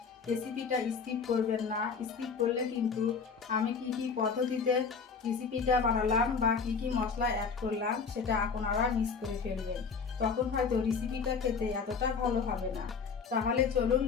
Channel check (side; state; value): right; quieter; 5.5 dB